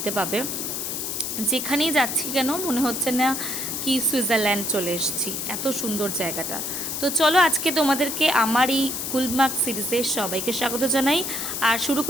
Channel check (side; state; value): left; noise; hiss, 3 dB below the sound